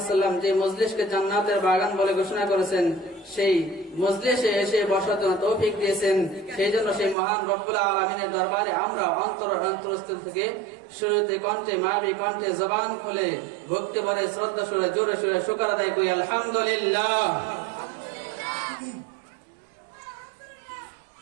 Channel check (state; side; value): drops out; left; at 7.2 s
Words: যে মজলিসকে জান্নাতের বাগান বলে ঘোষণা করেছেন, সেই মজলিসে এসে বসার জন্য তৌফিক দিয়েছেন। সেই জন্য সেই মহান রব্বুল আলামিনের দরবারে আমরা অন্তরস্থল থেকে সুরতে কণ্ঠে মাবি কণ্ঠে জবান খুলে ভক্তি ভরে শ্রদ্ধা সুরে জোরে সুরে শুকর আদায় করি আলহামদুলিল্লাহ।